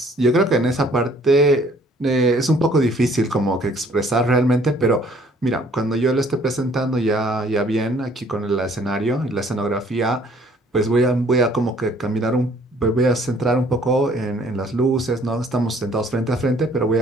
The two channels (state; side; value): normal; both; correlation 0.59